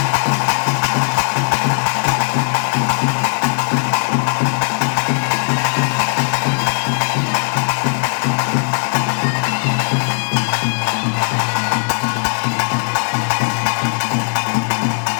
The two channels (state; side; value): silent; right; 57 dB below the other